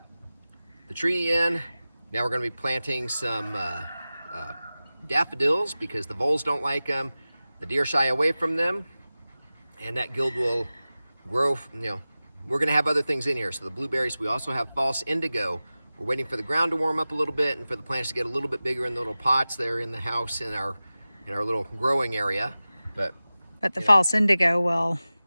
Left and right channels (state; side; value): inverted; both; correlation -0.96